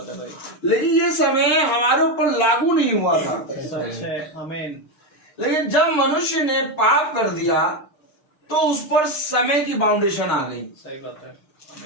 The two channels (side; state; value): right; late; 6.6 ms